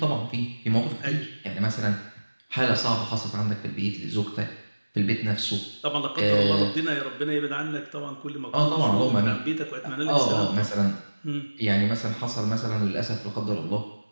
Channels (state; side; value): inverted; both; correlation -1.00